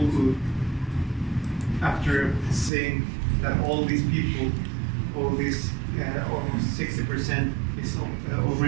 after saying that all these people, all these almost 60% is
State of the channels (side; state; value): left; drops out; at 2.7 s